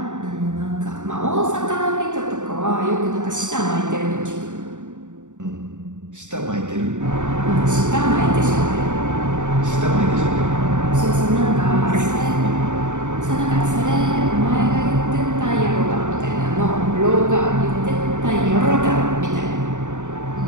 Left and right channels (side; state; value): left; late; 0.85 ms